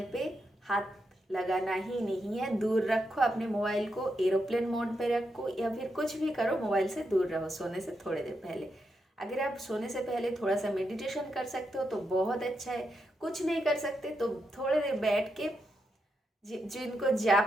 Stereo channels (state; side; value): normal; both; correlation 0.84